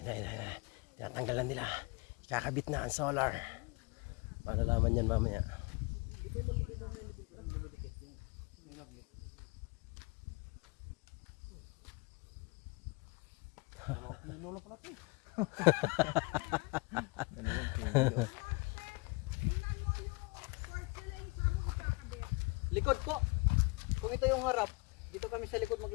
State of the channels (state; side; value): quieter; right; 28.0 dB